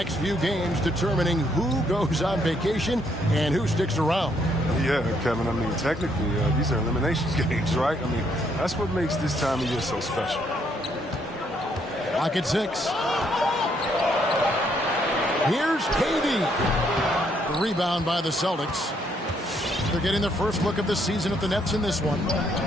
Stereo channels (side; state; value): both; normal; correlation 0.71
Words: few games determining who goes on vacation and who sticks around. Yeah, Kevin, I mean, technically, these are eliminations games, right? I mean, that's what makes this time of year so special. Clock at 6. Here's KD. The rebound by the Celtics. They're getting their first look of the season at the Nets in this one.